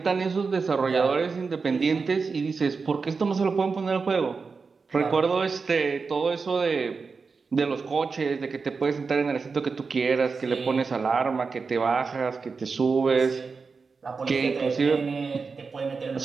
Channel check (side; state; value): left; quieter; 4.8 dB